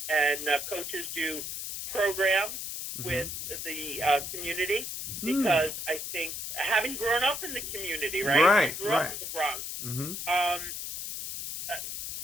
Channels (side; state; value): left; noise; hiss, 6 dB below the sound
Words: and coaches do programs with the community, because I think, having grown up in the community, right? I grew up in the Bronx.